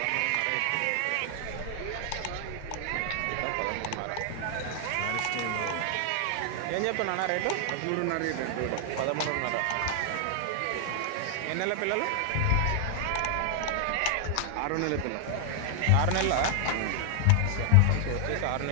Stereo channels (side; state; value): both; different; correlation 0.00